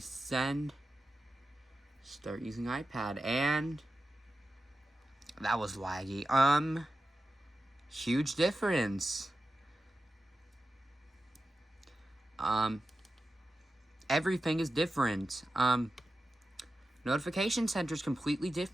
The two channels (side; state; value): both; normal; correlation 0.93